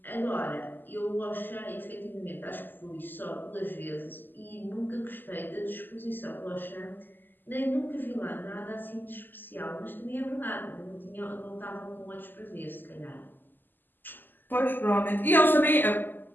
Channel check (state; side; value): late; right; 0.090 ms